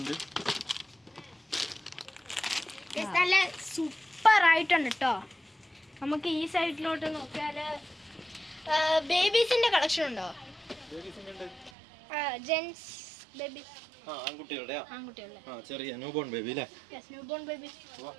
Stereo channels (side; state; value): left; drops out; at 11.7 s